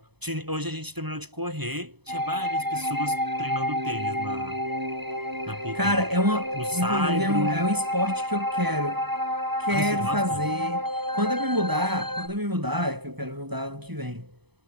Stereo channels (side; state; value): left; late; 0.99 ms